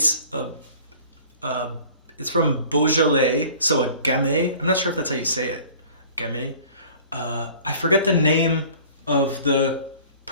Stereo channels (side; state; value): both; inverted; correlation -0.47